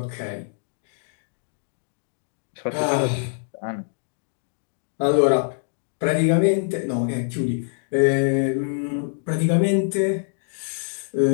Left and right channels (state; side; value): silent; right; digital silence